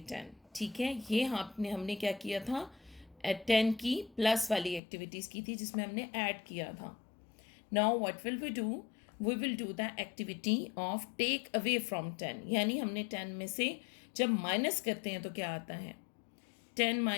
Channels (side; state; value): right; drops out; at 4.8 s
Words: 10। ठीक है, ये हमने क्या किया था, 10 की प्लस वाली एक्टिविटीज़ की थी जिसमें हमने ऐड किया था। Now what will we do, we will do the activity of take away from 10। यानी हमने 10 में से जब माइनस करते हैं तो क्या आता है, 10